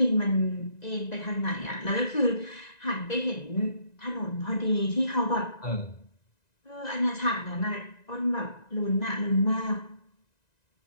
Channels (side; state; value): right; late; 1.9 ms